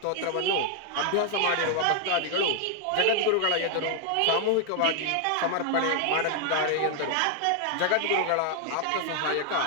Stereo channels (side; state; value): both; different; correlation 0.00